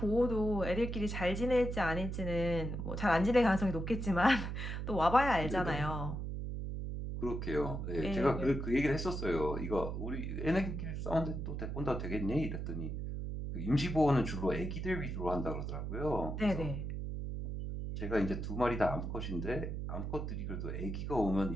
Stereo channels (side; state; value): right; noise; hum, 4 dB below the sound